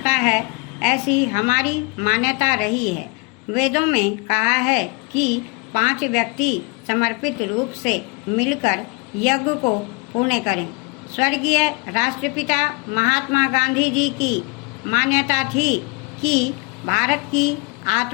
है, ऐसी हमारी मान्यता रही है। वेदों में कहा है कि 5 व्यक्ति समर्पित रूप से मिलकर यज्ञ को पूर्ण करें। स्वर्गीय राष्ट्रपिता महात्मा गांधी जी की मान्यता थी कि भारत की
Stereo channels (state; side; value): quieter; right; 27.9 dB